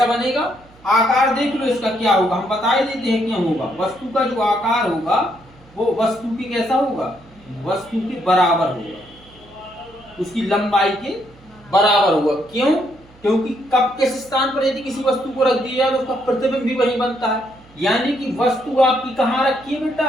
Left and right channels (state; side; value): noise; right; hum, 26 dB below the sound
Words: बनेगा? आकार देख लो इसका क्या होगा, हम बता ही देते हैं क्या होगा। वस्तु का जो आकार होगा वो वस्तु की कैसा होगा? वस्तु के बराबर होगा, उसकी लंबाई के बराबर होगा। क्यों? क्योंकि कब किस स्थान पर यदि किसी वस्तु को रख दिया तो उसका प्रतिबिंब भी वहीं बनता है। यानी कि वस्तु आपकी कहाँ रखी है